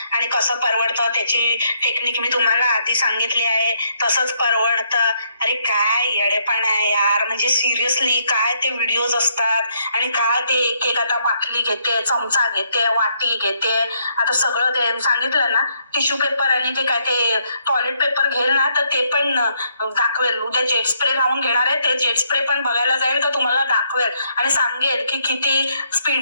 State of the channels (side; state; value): both; inverted; correlation -0.72